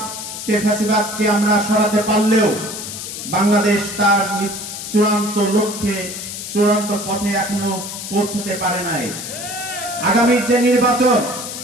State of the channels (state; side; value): noise; left; hiss, 8 dB below the sound